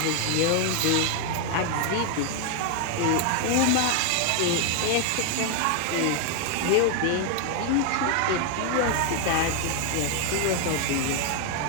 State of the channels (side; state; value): both; different; correlation 0.01